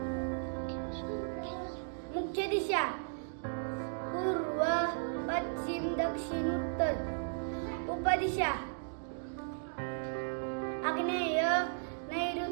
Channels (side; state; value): left; silent; digital silence